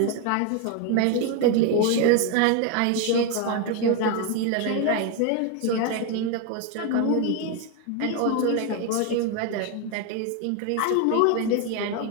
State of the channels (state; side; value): different; both; correlation 0.01